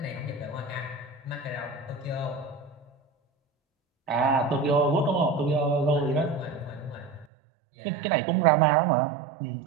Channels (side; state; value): left; drops out; at 7.2 s